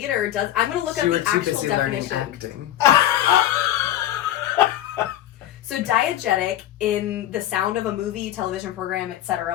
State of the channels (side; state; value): right; quieter; 12.8 dB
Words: does... I'm going to look up the actual definition. Acting. So diegetic, in the sound of a movie, television program,